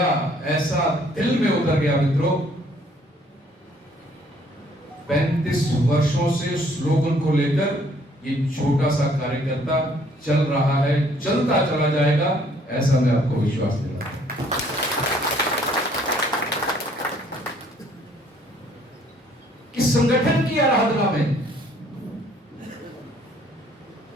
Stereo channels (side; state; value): both; normal; correlation 0.62